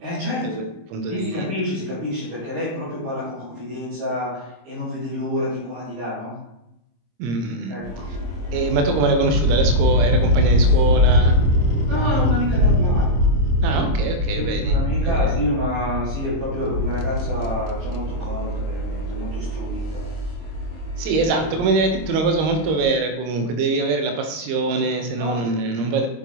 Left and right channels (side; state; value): left; late; 26 ms